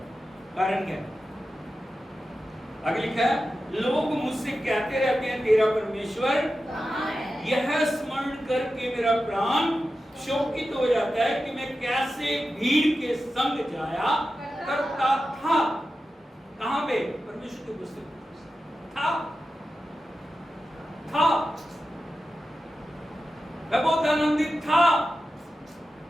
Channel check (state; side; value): normal; both; correlation 0.92